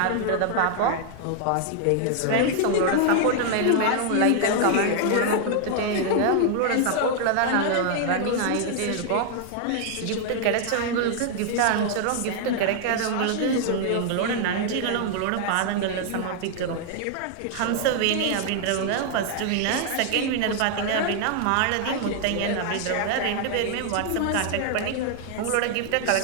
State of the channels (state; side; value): different; both; correlation 0.00